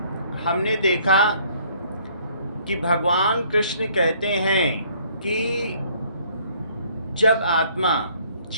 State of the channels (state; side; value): inverted; both; correlation -0.61